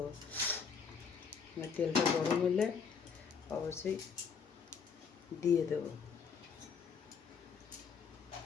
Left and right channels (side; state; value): right; quieter; 6.0 dB